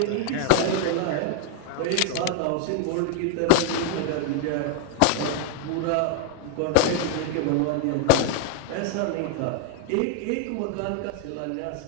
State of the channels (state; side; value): different; both; correlation 0.00